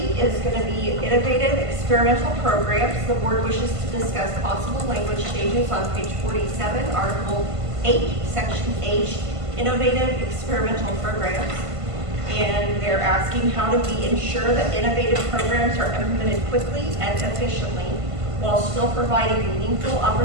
going to be innovative experimental programs. The board wishes to discuss possible language changes on page 47, Article 8, Section H, innovative experimental programs. And they're asking, how do we ensure that innovative programs are implemented quickly and efficiently while still providing meaningful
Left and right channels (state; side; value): late; left; 1.5 ms